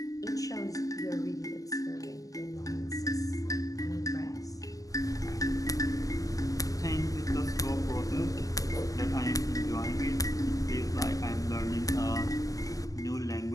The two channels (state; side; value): late; right; 0.17 ms